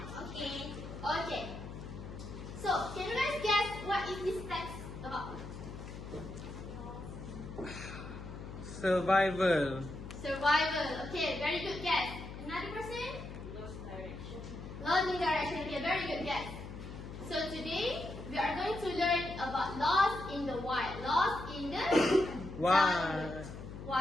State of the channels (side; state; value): left; noise; hum, 10 dB below the sound